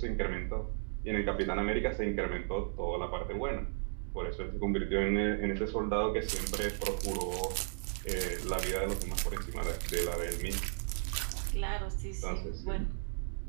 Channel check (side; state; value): left; silent; digital silence